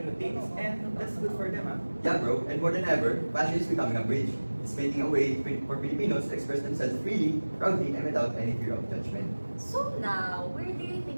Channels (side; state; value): both; inverted; correlation -1.00